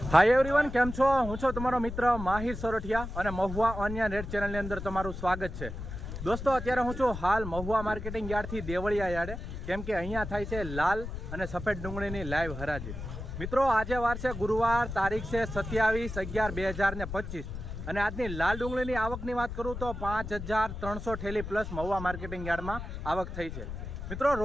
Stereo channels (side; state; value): left; noise; rumble, 8 dB below the sound